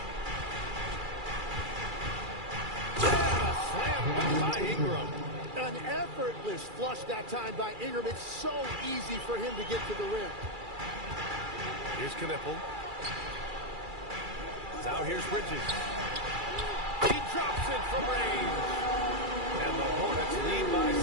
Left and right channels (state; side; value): late; left; 2.3 ms